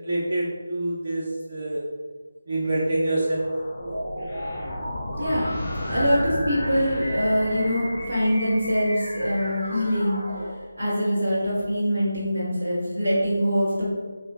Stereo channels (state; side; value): inverted; both; correlation -0.91